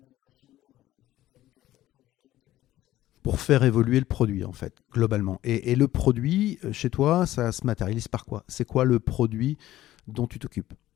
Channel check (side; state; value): right; quieter; 14.5 dB